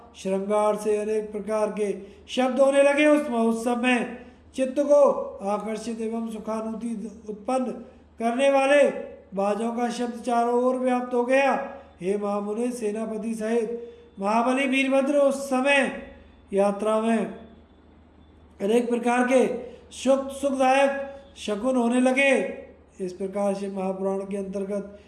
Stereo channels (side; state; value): both; identical; correlation 1.00